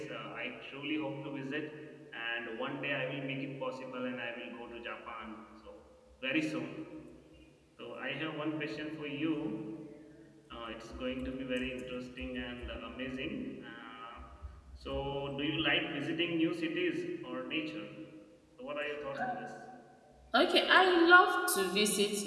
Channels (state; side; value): identical; both; correlation 1.00